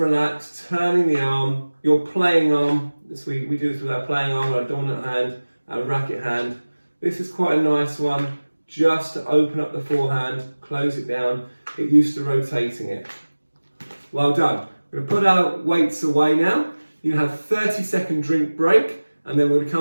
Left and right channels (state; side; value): inverted; both; correlation -1.00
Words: turning the arm, your playing arm. We do this with our playing arm, our dominant hand, our racket hand. This is quite a nice one, just to open up the forehand, close it down, get used to rotating it. Well done. We're going to put our weights away now. You have a 30-second drink break, and then we're going to